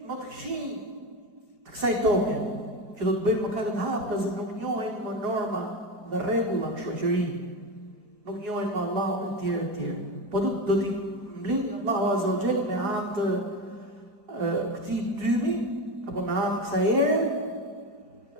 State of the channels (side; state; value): left; late; 4.9 ms